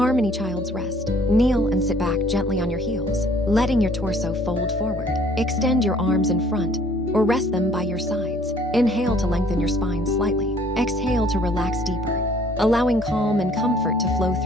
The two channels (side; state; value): both; normal; correlation 0.58